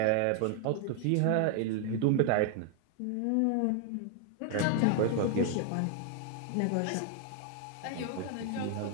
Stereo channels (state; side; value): different; both; correlation 0.00